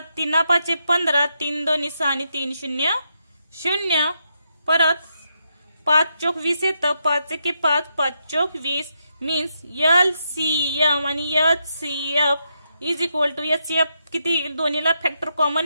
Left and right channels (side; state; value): both; inverted; correlation -0.81